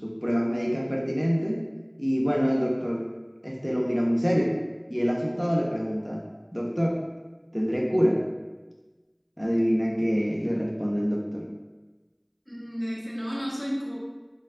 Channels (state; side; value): identical; both; correlation 1.00